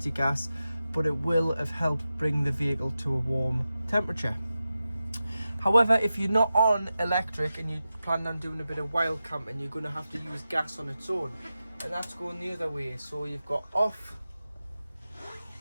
your gas, but it will have helped bring the vehicle to a warm temperature. However, if you're not on electric and you plan on doing a bit of wild camping, you're going to have to use gas on its own, and that's going the other way. So you've got off,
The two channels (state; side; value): inverted; both; correlation -0.92